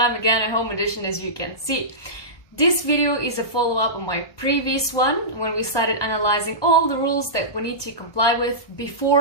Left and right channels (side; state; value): right; late; 1.3 ms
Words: again a home edition as you can see. This video is a follow-up on my previous one when we started analyzing all the rules that we need to comply with